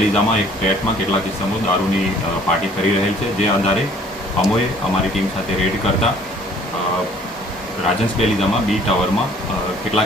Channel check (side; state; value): both; normal; correlation 0.56